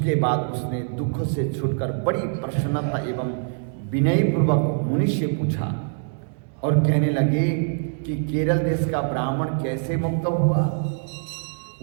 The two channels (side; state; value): left; silent; 63 dB below the other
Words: बाद उसने दुख से छूटकर बड़ी प्रसन्नता एवं विनयपूर्वक मुनि से पूछा और कहने लगे कि केरल देश का ब्राह्मण कैसे मुक्त हुआ,